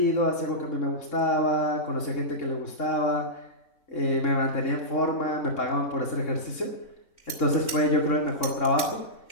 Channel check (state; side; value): late; right; 3.1 ms